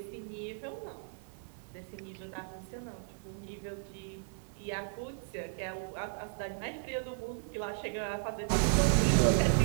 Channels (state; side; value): silent; left; digital silence